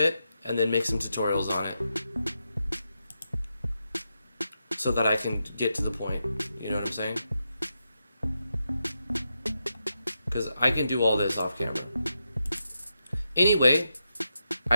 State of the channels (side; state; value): both; inverted; correlation -0.85